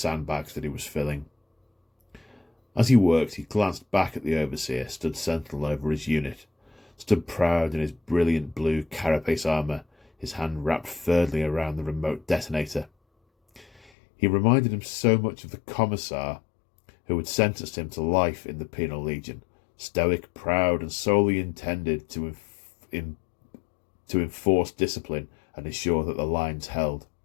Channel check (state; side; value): drops out; right; at 13.9 s